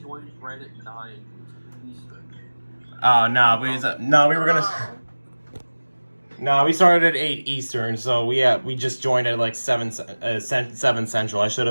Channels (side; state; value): both; inverted; correlation -1.00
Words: joined right at 9 Eastern. Oh no, we were gonna. No, we started at 8 Eastern, so we just joined at like 7 Central. I should